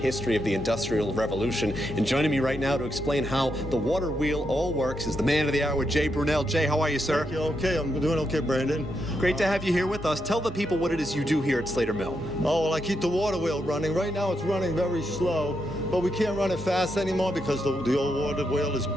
of the Industrial Revolution. And joining me right now to explain how the water wheel all works is the man of the hour, Jay Brunel. Jay, how are you, sir? Thank you. Okay, I'm doing okay, Brandon. Great to have you here with us. Tell the people what it is you do here at SLATER Mill. Oh, well, I keep the water wheel running. Right now it's running very slow, but we can't run it fast anymore because the old water wheel is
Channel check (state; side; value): normal; both; correlation 0.82